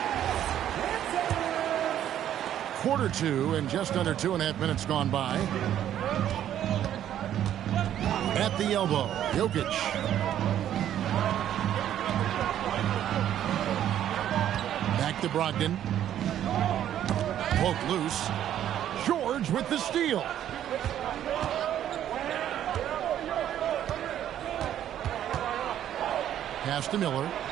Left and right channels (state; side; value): quieter; left; 11.0 dB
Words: Quarter 2 and just under 2.5 minutes gone by. At the elbow, Jokic. Back to Brogdon. Poked loose. George with the steal. Pass to Miller.